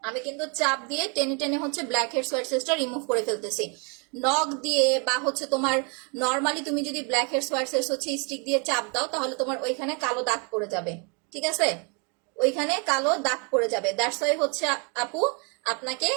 আমি কিন্তু চাপ দিয়ে টেনে টেনে হচ্ছে ব্ল্যাক হেডস হোয়াইট হেডসটা রিমুভ করে ফেলতেছি। নখ দিয়ে বা হচ্ছে তোমার নর্মালি তুমি যদি ব্ল্যাক হেডস হোয়াইট হেডস হচ্ছে স্টিক দিয়ে চাপ দাও, তাহলে তোমার ওইখানে কালো দাগ পড়ে যাবে, ঠিক আছে, ওইখানে কালো দাগ পড়ে যাবে। দ্যাটস ওয়াই হচ্ছে আপু আপনাকে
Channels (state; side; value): quieter; left; 35.0 dB